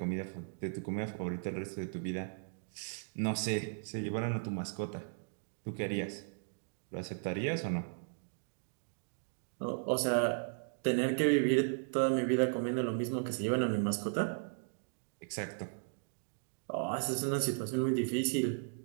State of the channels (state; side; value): silent; left; digital silence